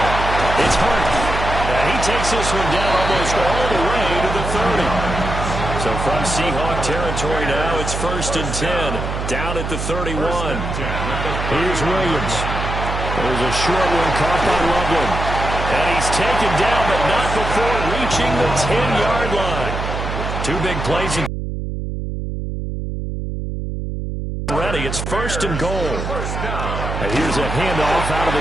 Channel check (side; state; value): right; noise; hum, 4 dB below the sound